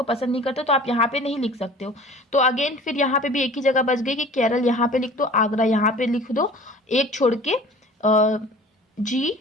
पसंद नहीं करता, तो आप यहाँ पे नहीं लिख सकते हो। तो अगेन फिर यहाँ पे भी एक ही जगह बच गई कि केरल यहाँ पे लिख दो, आगरा यहाँ पे लिख दो, एक छोड़ के जी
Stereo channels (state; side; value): normal; both; correlation 0.45